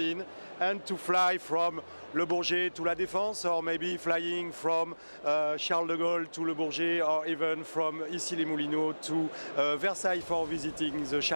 and to fly from Le Bourget to La Défense, or maybe flying from Charles de Gaulle to Le Bourget, or even from Issy-les-Moulineaux to Versailles for visiting the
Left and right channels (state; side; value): inverted; both; correlation -1.00